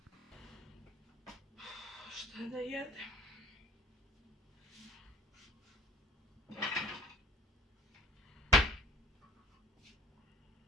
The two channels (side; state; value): both; normal; correlation 0.49